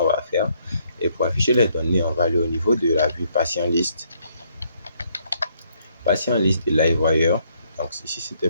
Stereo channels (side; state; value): both; inverted; correlation -0.70